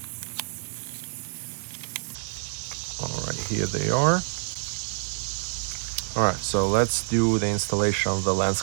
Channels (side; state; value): left; silent; 60 dB below the other